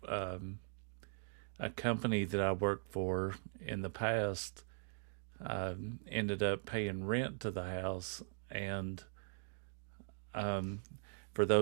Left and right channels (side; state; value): left; silent; digital silence